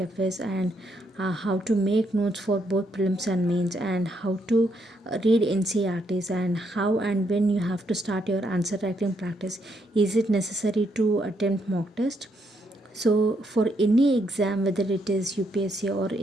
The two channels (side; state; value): both; normal; correlation 0.76